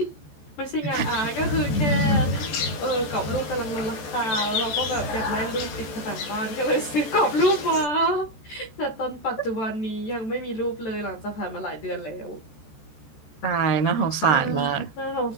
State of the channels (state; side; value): late; right; 14 ms